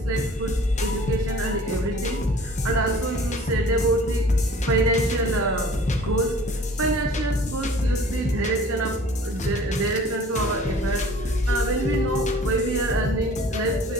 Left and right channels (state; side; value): normal; both; correlation 0.49